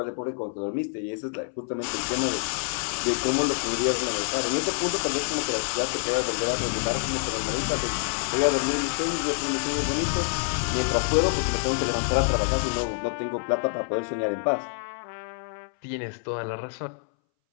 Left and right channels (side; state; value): right; silent; 60 dB below the other